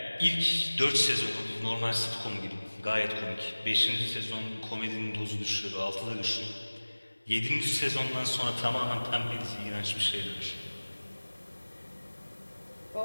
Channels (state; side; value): inverted; both; correlation -1.00